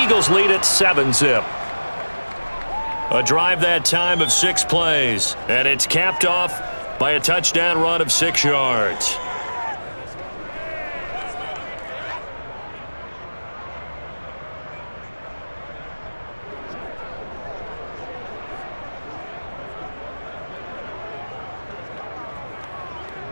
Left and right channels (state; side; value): inverted; both; correlation -1.00